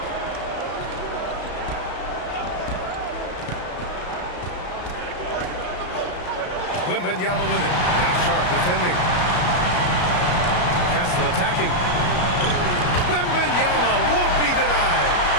Wembanyama with it. Now Sharp defending. Castle attacking. Wembanyama won't be denied.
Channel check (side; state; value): right; late; 33 ms